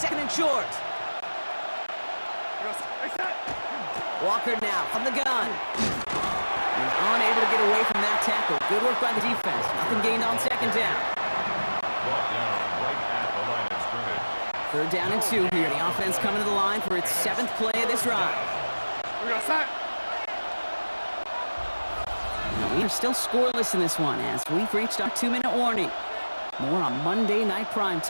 and short. Walker now from the gun. He's unable to get away from that tackle. Good work by the defense. Nothing gained on second down. Brought down right at the line of scrimmage. Third down and 2 here. The offense coming to the line for its 7th play of this drive. Now, we are still scoreless in this one as we've reached our 2-minute warning. More on Monday Night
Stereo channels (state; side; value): inverted; both; correlation -1.00